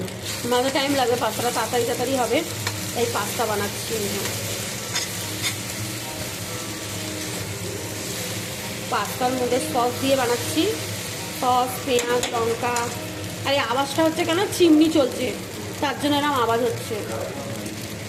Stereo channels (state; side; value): identical; both; correlation 1.00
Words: আমাদের টাইম লাগবে, পাস্তাটা তাড়াতাড়ি হবে, তাই পাস্তা বানাচ্ছি। পাস্তার মধ্যে সস দিয়ে বানাচ্ছি, সস, পেঁয়াজ, লঙ্কা। আর এই আওয়াজটা হচ্ছে কেন, চিমনি চলছে তার জন্য এরকম আওয়াজ হচ্ছে।